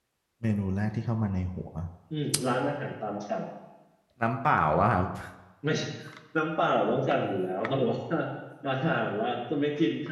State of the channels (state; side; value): identical; both; correlation 1.00